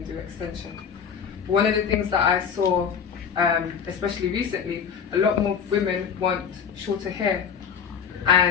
do extensions. One of the things that I saw, especially recently, a lot more women want shorter hair,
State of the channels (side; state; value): right; quieter; 7.1 dB